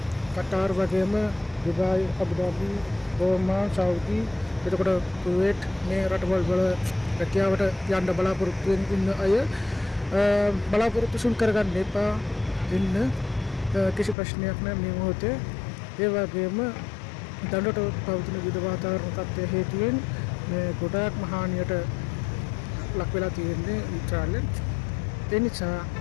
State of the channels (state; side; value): drops out; right; at 14.2 s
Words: කටාර් වගේම දුබායි, අබුදාබි, ඕමාන්, සෞදි, එතකොට කුවේට් මේ රටවල් වල රැකියාවට යන්න බලාපොරොත්තු වෙන අය බලාපොරොත්තු සුන් කරගන්න එපා. ඉන්න කිසි ප්‍රශ්නයක් නැහැ මේ මොහොතේ. ඒ වගේම දඬුවට පවතින විවිධ වාතාවරණ තත්ත්වය හේතුවෙන් මේ ගොඩාක් මහානියට ලක් වෙලා තියෙන්නේ ඉස්රායලෙන්. ඒ නිසා